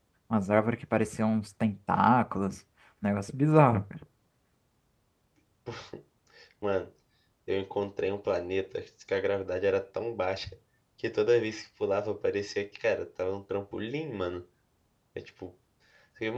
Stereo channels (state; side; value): identical; both; correlation 1.00